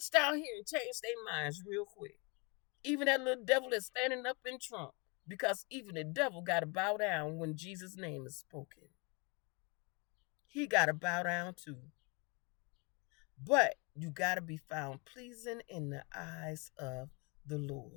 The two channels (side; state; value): right; quieter; 30.8 dB